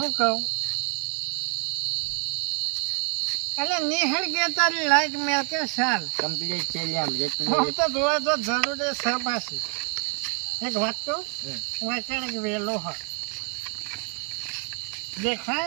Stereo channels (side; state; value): left; quieter; 38.5 dB